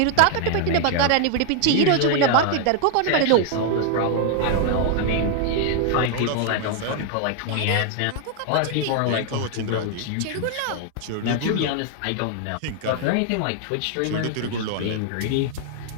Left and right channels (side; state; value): both; different; correlation 0.00